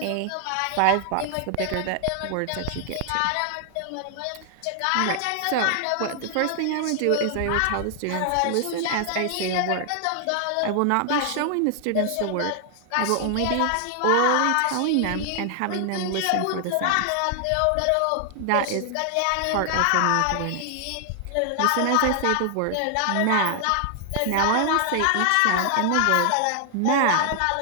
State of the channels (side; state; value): both; different; correlation 0.00